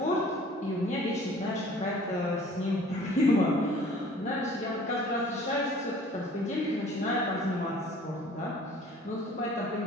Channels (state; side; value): normal; both; correlation 0.51